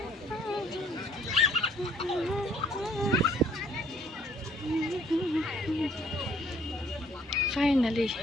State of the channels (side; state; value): both; normal; correlation 0.61